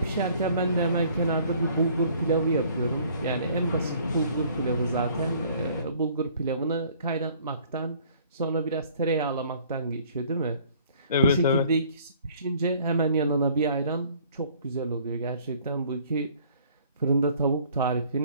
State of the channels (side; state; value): both; inverted; correlation -0.57